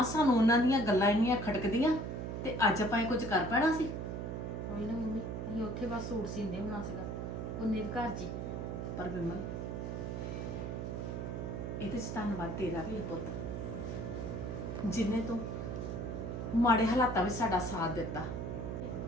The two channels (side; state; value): right; noise; hum, 4 dB below the sound